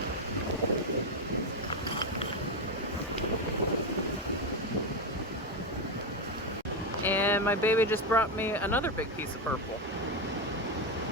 And my baby just brought me another big piece of purple.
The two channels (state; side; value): normal; both; correlation 0.10